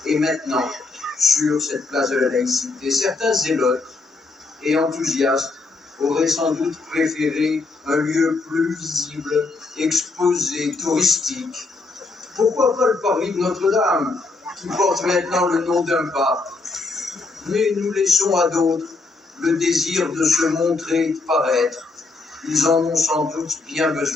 et maintenant sur cette place de la laïcité. Certains zélotes et enthousiastes auraient sans doute préféré un lieu plus visible, exposé, touristique. Pourquoi pas le parvis de Notre-Dame, qui porte maintenant le nom d'un pape? Mais nous laissons à d'autres le désir de se montrer, de paraître. Ils en ont sans doute bien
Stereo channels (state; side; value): quieter; right; 3.7 dB